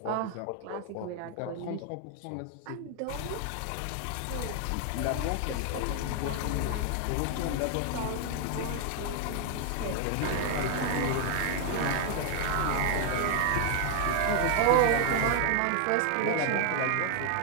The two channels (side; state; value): both; different; correlation 0.00